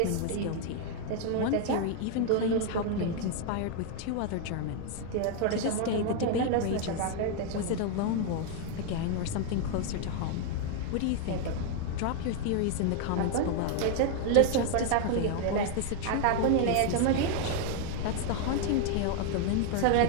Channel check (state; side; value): different; both; correlation 0.00